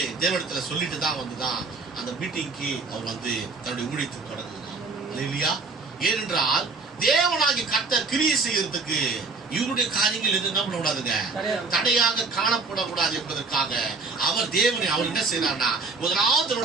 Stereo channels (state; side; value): quieter; left; 4.1 dB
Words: தேவனிடத்துல சொல்லிட்டு தான் வந்துதான் அந்த மீட்டிங்க்கு அவர் வந்து தன்னுடைய ஊழியத்தை தொடங்குகிறார் இல்லையா? ஏனென்றால் தேவனாகி கர்த்தர் கிரியை செய்யறதுக்கு இவருடைய காரியங்கள் எது என்ன பண்ணக்கூடாதுங்க, தடையாக காணப்படக்கூடாது என்பதற்காக அவர் தேவனை அவர் என்ன செய்யறார்னா முதலாவது